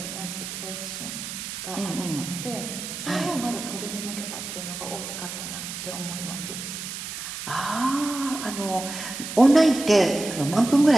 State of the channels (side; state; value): right; noise; hiss, 7 dB below the sound